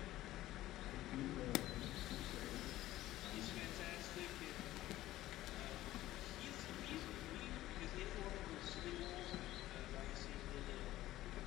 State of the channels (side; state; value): right; quieter; 15.3 dB